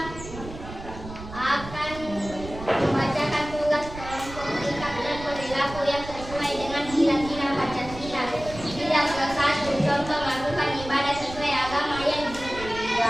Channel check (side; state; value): right; noise; rumble, 12 dB below the sound